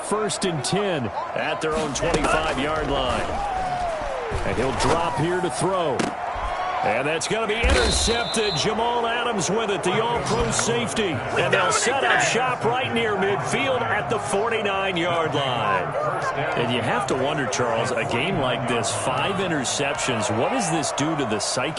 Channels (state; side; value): identical; both; correlation 1.00